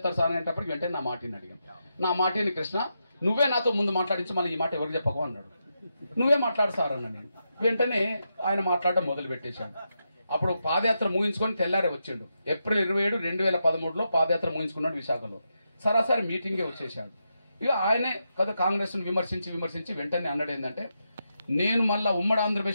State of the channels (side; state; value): both; inverted; correlation -0.85